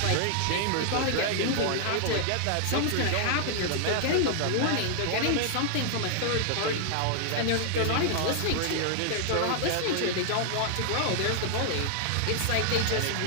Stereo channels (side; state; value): both; different; correlation 0.00